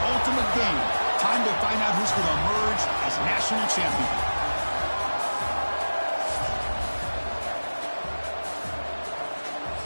ultimate game. Time to find out who's going to emerge as national champion.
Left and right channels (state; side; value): inverted; both; correlation -1.00